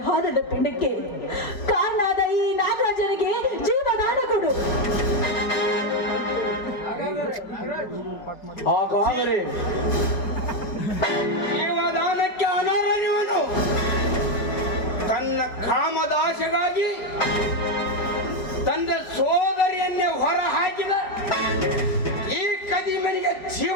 ಹಾದದ ಪಿಂಡಕ್ಕೆ ಕಾರಣಾದ ಈ ನಾಗರಾಜನಿಗೆ ಜೀವದಾನ ಕೊಡು. ಹಾಗಾದ್ರೆ ಜೀವದಾನಕ್ಕೆ ಅನರ್ಹನಿವನು. ತನ್ನ ಕಾಮದಾಶೆಗಾಗಿ ತಂದೆ ಸೋದರಿಯನ್ನೇ ಹೊರ ಹಾಕಿದ ಈ ಕದಿಮನಿಗೆ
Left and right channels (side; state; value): right; late; 4.8 ms